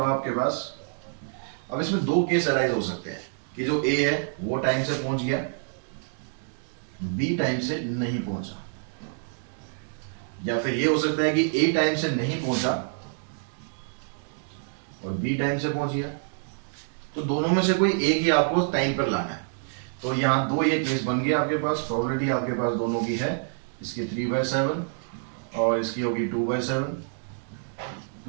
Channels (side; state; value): left; silent; digital silence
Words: आपके पास, अब इसमें 2 केस अराइज हो सकते हैं कि जो ए है वो टाइम से पहुंच गया, बी टाइम से नहीं पहुंचा, या फिर ये हो सकता है कि ए टाइम से नहीं पहुंचा और बी टाइम से पहुंच गया। तो दोनों में से कोई एक ही आपको टाइम पर लाना है। तो यहाँ 2 ये केस बन गया आपके पास, प्रोबेबिलिटी आपके पास दोनों की है, इसकी 3/7 और इसकी होगी 2/7